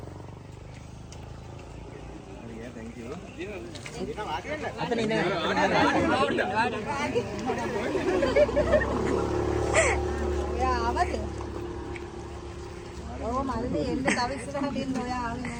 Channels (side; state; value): both; identical; correlation 1.00